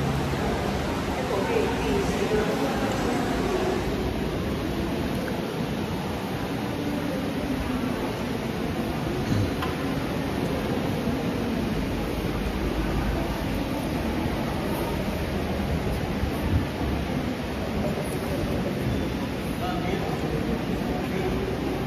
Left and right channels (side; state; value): both; identical; correlation 1.00